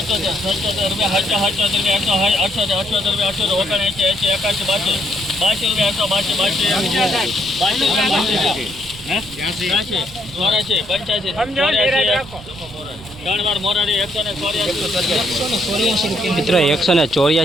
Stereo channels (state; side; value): noise; right; rumble, 18 dB below the sound